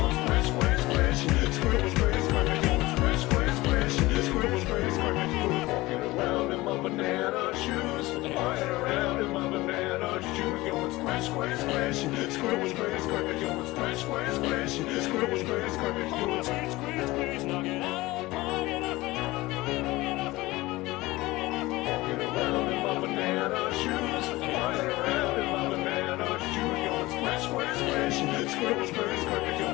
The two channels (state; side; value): quieter; right; 19.8 dB